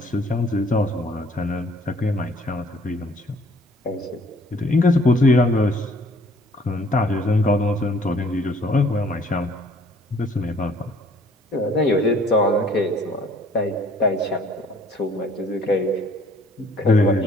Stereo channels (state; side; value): normal; both; correlation 0.58